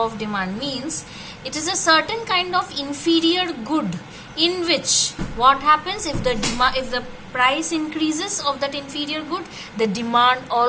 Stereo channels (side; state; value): both; identical; correlation 1.00